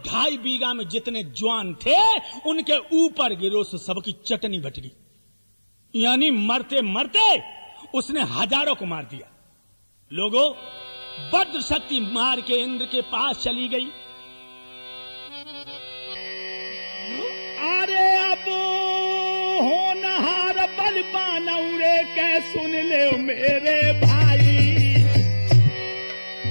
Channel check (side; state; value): both; inverted; correlation -1.00